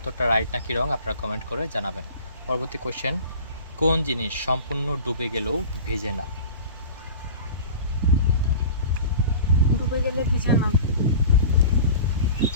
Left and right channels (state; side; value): inverted; both; correlation -0.39